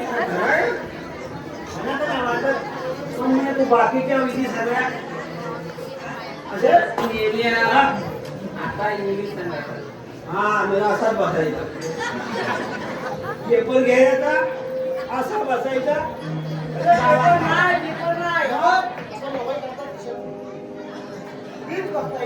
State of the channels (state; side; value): identical; both; correlation 1.00